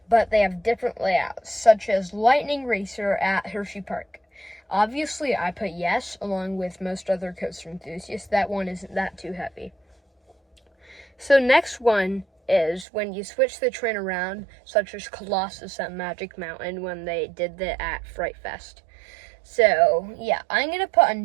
but they have different layouts, such as Lightning Racer at Hershey Park. Obviously, I put yes, along with most other coaster enthusiasts. That one isn't that too heavy. So next one is when you switch the train around, such as Colossus at Magic Mountain when they did that at Fright Fest. So, I'm going to put a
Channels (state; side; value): drops out; left; at 12.9 s